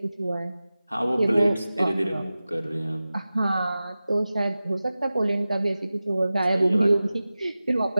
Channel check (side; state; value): both; inverted; correlation -0.96